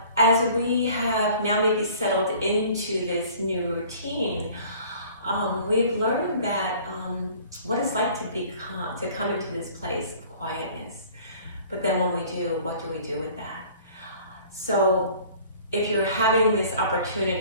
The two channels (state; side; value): inverted; both; correlation -0.50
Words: as we have now maybe settled into this new routine, we've learned that what it's like to come into this place of quietness. But then when we do, what do we do with that? So if you're having this